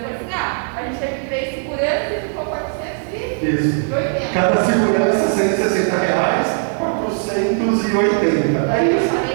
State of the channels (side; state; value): left; silent; 58 dB below the other